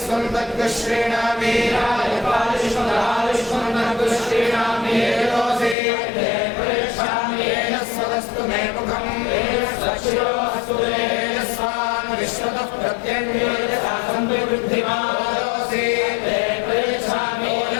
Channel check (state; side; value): drops out; right; at 5.8 s